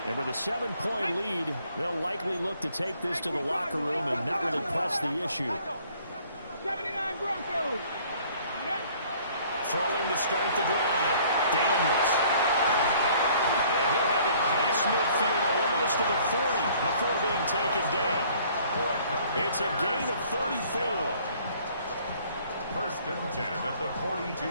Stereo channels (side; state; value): both; inverted; correlation -0.57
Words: And with a 7-point lead, they'll likely look to take this to the locker room and not really press the issue. 79 Broncos. Throwing to start the drive. Daniels. And he'll have it past midfield almost to the 40 before being taken down. It's a gain of 34. 1st and 10 at the